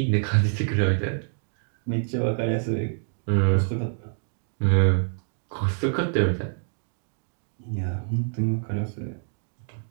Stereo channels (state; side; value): silent; left; digital silence